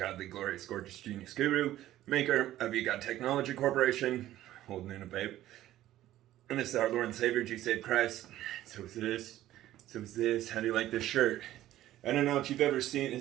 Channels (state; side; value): quieter; left; 14.0 dB